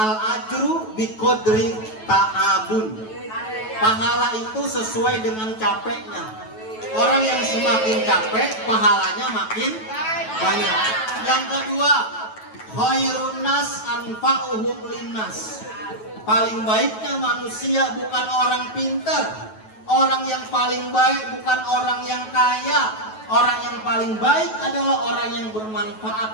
biqadri ta'abun. Pahala itu sesuai dengan capeknya. Orang yang semakin capek, pahalanya makin banyak. Yang kedua, khairun nas anfa'uhum linnas. Paling baiknya manusia bukan orang pintar. Orang yang paling baik bukan orang yang kaya. Orang yang paling baik adalah orang yang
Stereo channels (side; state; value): right; late; 9.2 ms